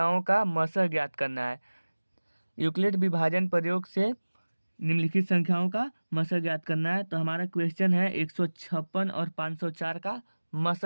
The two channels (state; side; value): inverted; both; correlation -1.00